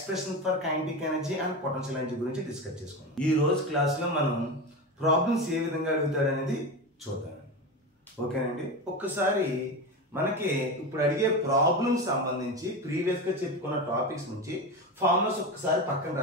for kinetic energy and potential energy గురించి డిస్కస్ చేసుకున్నాం. ఈ రోజు క్లాస్ లో మనం ప్రాబ్లమ్స్ ఏ విధంగా అడుగుతాడు అనేది చూద్దాం. ఓకేనండి, ఒక్కసారి మనకి ఇప్పుడు అడిగే ప్రాబ్లమ్స్ సంబంధించి ప్రీవియస్ గా చెప్పుకున్న టాపిక్స్ నుంచి ఫార్ములాస్ ఒక్కసారి పక్కన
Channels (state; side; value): normal; both; correlation 0.22